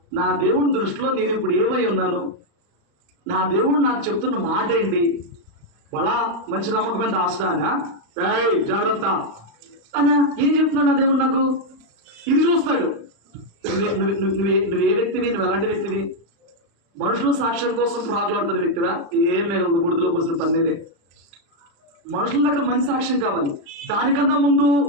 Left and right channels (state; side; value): late; left; 35 ms